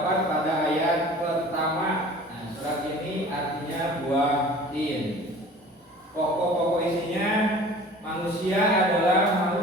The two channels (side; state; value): both; normal; correlation 0.44